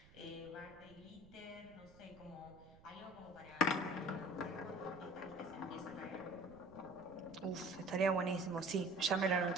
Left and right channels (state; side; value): noise; right; rumble, 23 dB below the sound